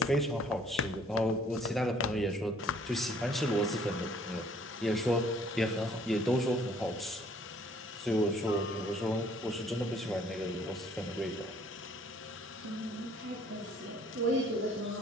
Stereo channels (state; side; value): normal; both; correlation 0.59